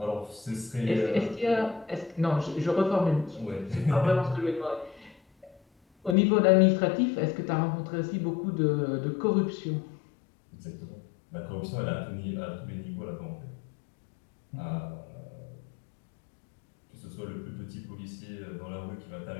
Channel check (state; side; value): drops out; right; at 6.2 s